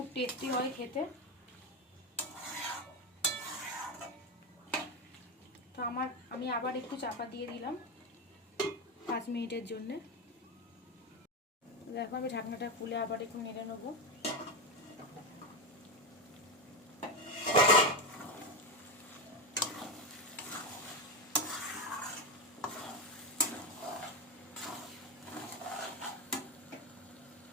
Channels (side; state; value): both; normal; correlation 0.14